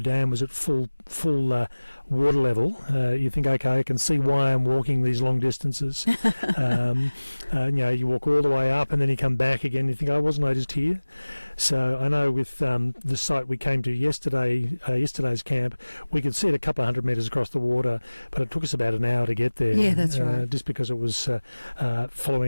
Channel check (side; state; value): both; inverted; correlation -1.00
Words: was at full water level. You think, okay, I can see why I'm walking these long distances. You walk all the way up and then you come back again. You think, oh, wasn't I just here? So I know with the site we came to yesterday's camp, we could see it a couple of 100 metres across the water, but it took us about an hour to get there. Yeah, that's right. Just because it was